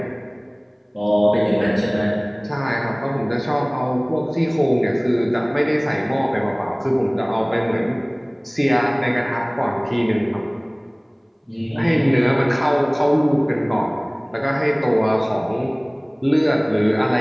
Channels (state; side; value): identical; both; correlation 1.00